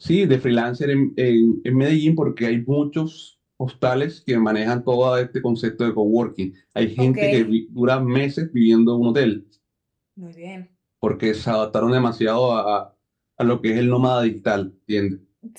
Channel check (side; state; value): both; identical; correlation 1.00